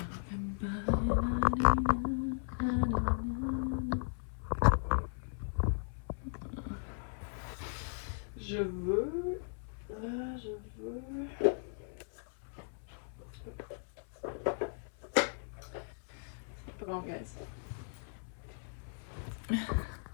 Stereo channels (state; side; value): silent; right; 53 dB below the other